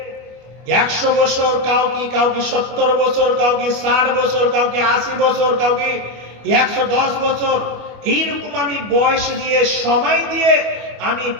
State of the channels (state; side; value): late; left; 25 ms